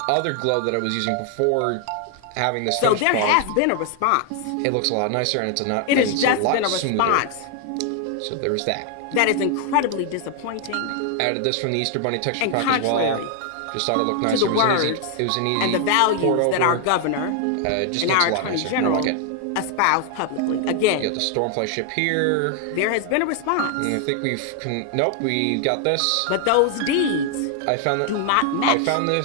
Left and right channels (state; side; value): different; both; correlation 0.00